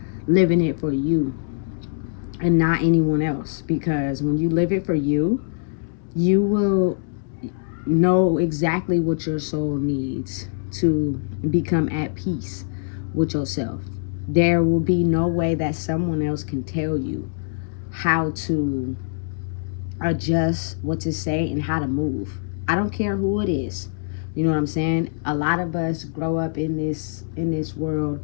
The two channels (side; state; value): right; silent; digital silence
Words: living it for you and not anyone else. Because when you live it for you, you will know exactly what your soul needs to become at peace with yourself. There will be no way that someone else can tell you how to adjust, what to say, and how to move. I don't care who it is. You know what I'm saying? A lot of us grow up in this world